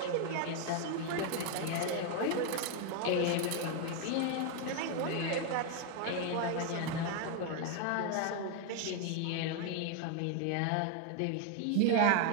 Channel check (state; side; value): different; both; correlation 0.01